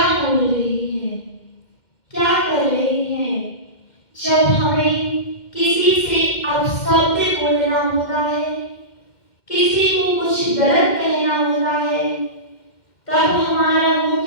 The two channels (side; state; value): right; late; 2.1 ms